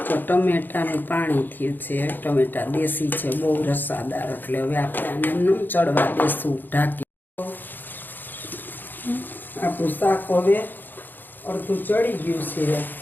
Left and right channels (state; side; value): late; right; 0.090 ms